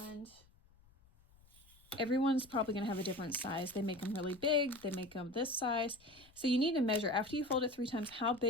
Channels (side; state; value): left; noise; rumble, 28 dB below the sound